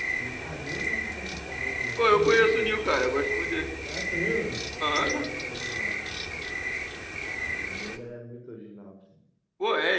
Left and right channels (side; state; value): both; identical; correlation 1.00